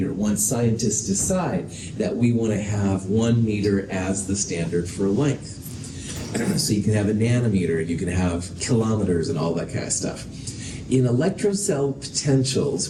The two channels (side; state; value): both; identical; correlation 1.00